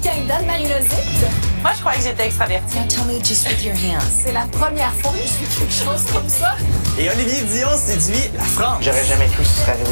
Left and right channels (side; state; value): both; inverted; correlation -1.00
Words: d'Anne-Marie Lozic. Moi, je croyais que j'étais extravertie. Now tell me just with your hands. C'est la première fois que je fais quelque chose comme ça. Et Olivier Dion séduit la France. J'aurais jamais cru que ce serait